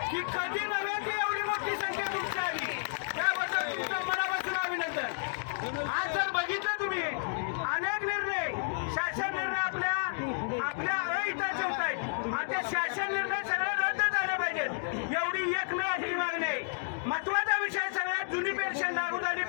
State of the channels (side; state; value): right; silent; digital silence